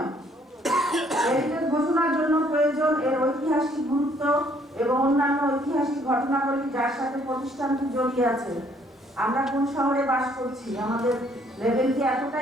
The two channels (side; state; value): both; normal; correlation 0.64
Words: হেরিটেজ ঘোষণার জন্য প্রয়োজন এর ঐতিহাসিক গুরুত্ব এবং অন্যান্য ঐতিহাসিক ঘটনাবলী যার সাথে প্রতিষ্ঠানটি জড়িয়ে আছে। আমরা কোন শহরে বাস করছি? আমাদের লেভেল কি